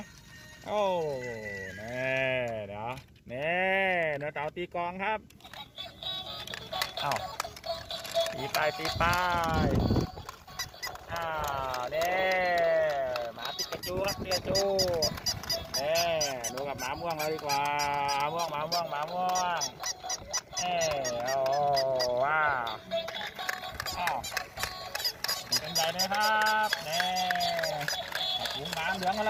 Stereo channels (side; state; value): both; identical; correlation 1.00